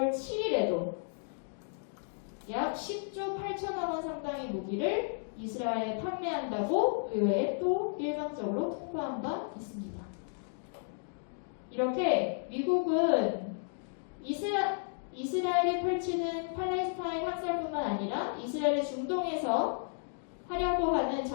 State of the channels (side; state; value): right; silent; digital silence